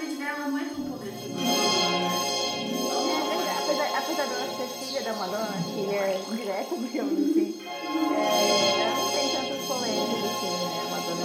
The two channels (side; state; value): both; identical; correlation 1.00